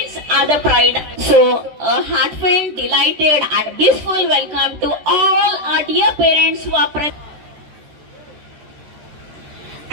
are the pride. So, a heartfelt, delighted and blissful welcome to all our dear parents who are present.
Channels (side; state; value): left; late; 13 ms